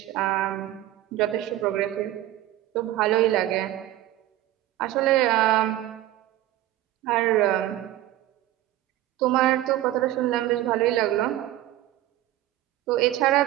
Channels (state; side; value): quieter; left; 14.4 dB